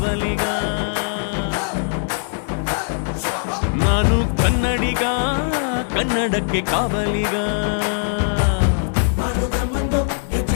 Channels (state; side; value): silent; right; 65 dB below the other